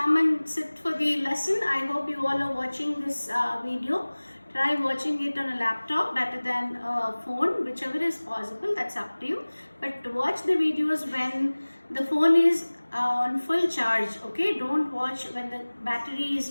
and sit for the lesson? I hope you all are watching this video. Try watching it on a laptop better than a phone, whichever is possible. That's up to you. But watch the videos when the phone is on full charge. Okay? Don't watch when the battery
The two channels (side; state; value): both; inverted; correlation -1.00